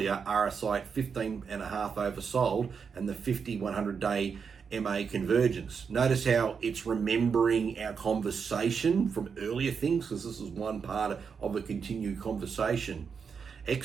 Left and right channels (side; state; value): left; quieter; 6.1 dB